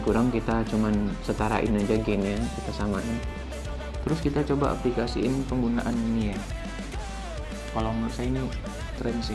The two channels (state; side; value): identical; both; correlation 1.00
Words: kurang kita cuman setarain aja gainnya, kita samain. Terus kita coba aplikasiin penggunaan ini ya. Kalau menurut saya ini keren